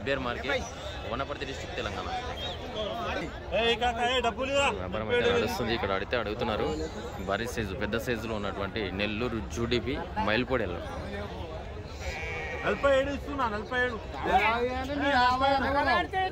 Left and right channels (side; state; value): both; identical; correlation 1.00